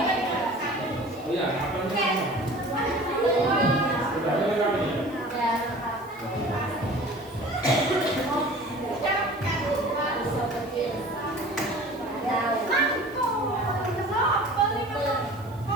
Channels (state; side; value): noise; right; hiss, 26 dB below the sound